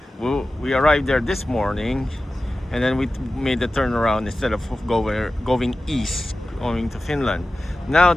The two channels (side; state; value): both; normal; correlation 0.95